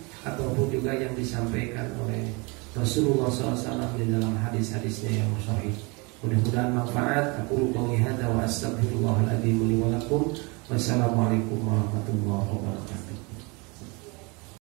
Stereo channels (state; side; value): quieter; left; 28.8 dB